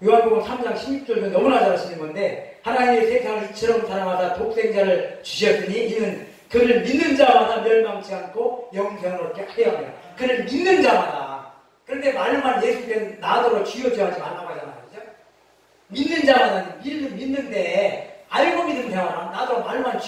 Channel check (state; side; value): identical; both; correlation 1.00